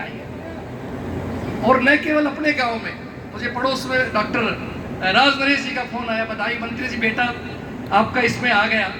है। और न केवल अपने गांव में, मुझे पड़ोस में डॉक्टर राज नरेश जी का फोन आया, बधाई मंत्री जी, बेटा आपका इसमें आ गया,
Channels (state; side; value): identical; both; correlation 1.00